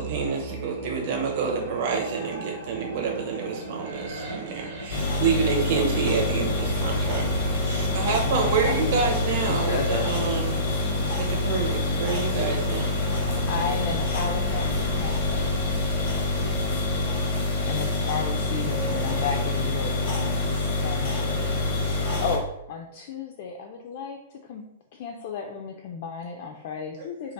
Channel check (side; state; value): both; inverted; correlation -0.37